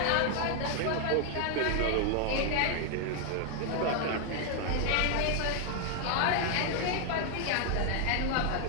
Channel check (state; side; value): different; both; correlation 0.00